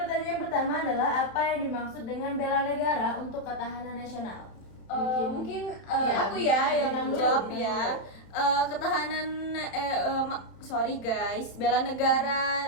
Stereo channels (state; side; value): late; right; 31 ms